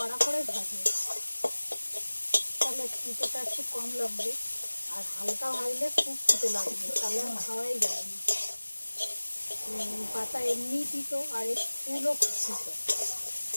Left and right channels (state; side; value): inverted; both; correlation -1.00